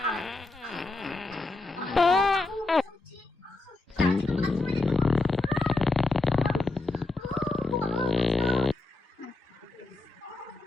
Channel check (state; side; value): quieter; right; 3.4 dB